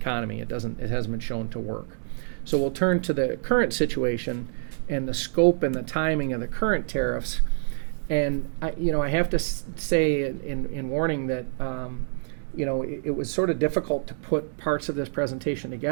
It hasn't been shown to work. So we'll turn to the current situation and the scope and the timing of the current tariffs. And I have to say in warning that it was sort of difficult to put parts of this presentation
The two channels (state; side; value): silent; left; digital silence